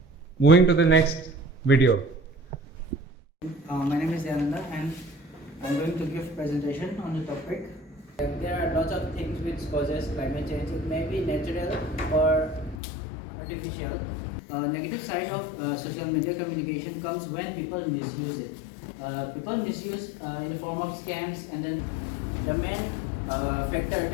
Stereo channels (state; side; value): drops out; right; at 12.8 s